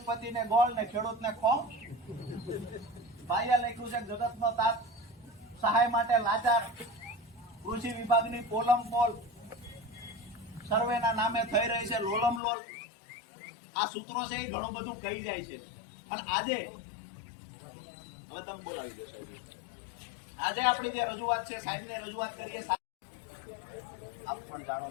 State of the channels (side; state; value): right; drops out; at 12.4 s